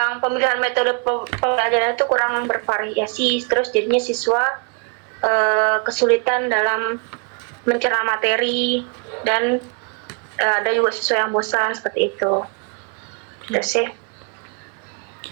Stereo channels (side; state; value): left; quieter; 37.9 dB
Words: pemilihan metode pembelajaran itu kurang bervariasi, terus jadinya siswa kesulitan dalam mencerna materi dan ada juga siswa yang bosan seperti itu. Itu sih.